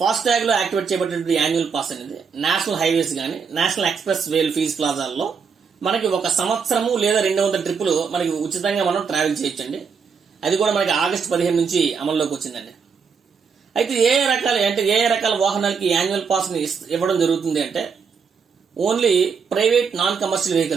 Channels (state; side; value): quieter; left; 5.9 dB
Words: ఫాస్ట్ ట్యాగ్ లో యాక్టివేట్ చేయబడినటువంటి యాన్యువల్ పాస్ అనేది నేషనల్ హైవేస్ గానీ నేషనల్ ఎక్స్ప్రెస్ వేల్ ఫీజ్ ప్లాజాల్లో మనకి ఒక సంవత్సరము లేదా 200 ట్రిప్పులు మనకి ఉచితంగా మనం ట్రావెల్ చేయొచ్చండి. అది కూడా మనకి ఆగస్టు 15 నుంచి అమల్లోకి వచ్చిందండి. అయితే ఏ రకాల వాహనాలకి యాన్యువల్ పాస్ ని ఇవ్వడం జరుగుతుంది అంటే, only private non commercial